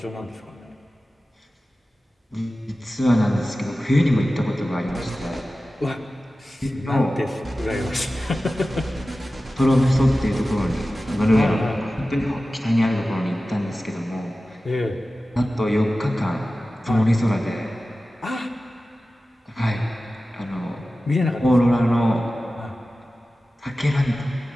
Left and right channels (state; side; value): normal; both; correlation 0.95